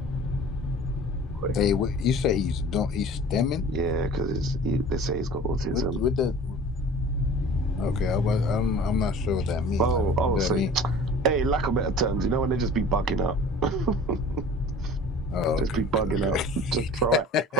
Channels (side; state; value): both; normal; correlation 0.43